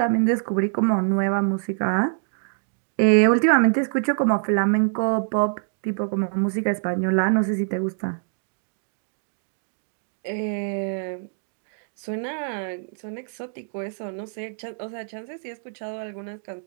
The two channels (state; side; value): silent; left; digital silence